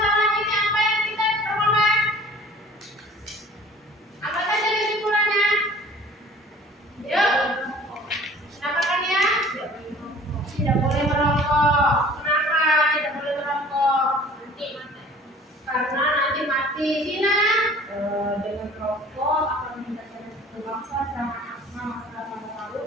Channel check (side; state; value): both; normal; correlation 0.48